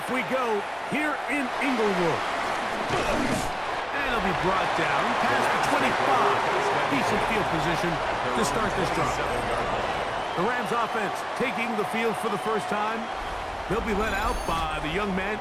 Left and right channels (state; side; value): identical; both; correlation 1.00